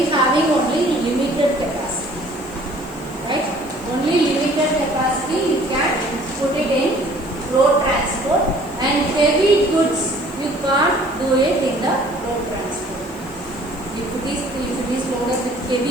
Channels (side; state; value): right; noise; hiss, 24 dB below the sound